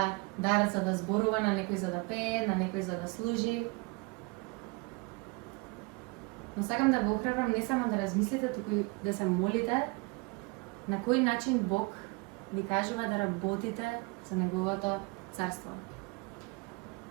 дар за да зборува, на некој за да пее, на некој за да служи. Но сакам да ве охрабрам не само да размислите, туку и да се молите на кој начин Бог ви кажува да работите за Неговото царство.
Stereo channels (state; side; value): quieter; left; 28.0 dB